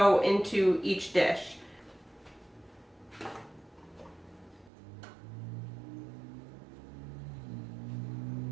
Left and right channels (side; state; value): left; drops out; at 4.7 s